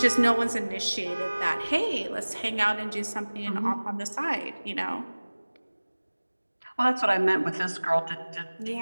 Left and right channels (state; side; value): inverted; both; correlation -1.00